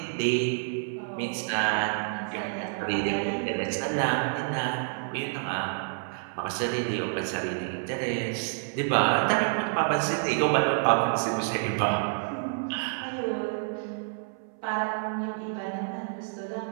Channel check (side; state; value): left; silent; 57 dB below the other